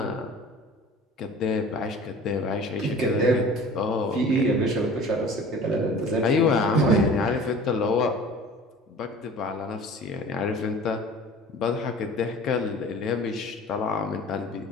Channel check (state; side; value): normal; both; correlation 0.43